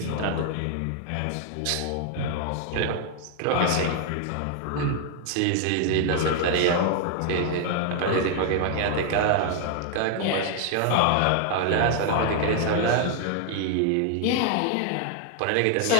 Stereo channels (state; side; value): different; both; correlation 0.00